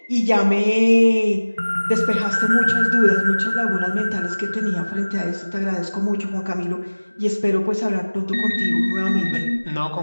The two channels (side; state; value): both; inverted; correlation -1.00